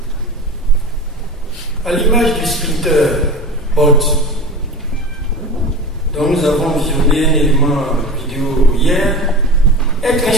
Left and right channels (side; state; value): both; normal; correlation 0.31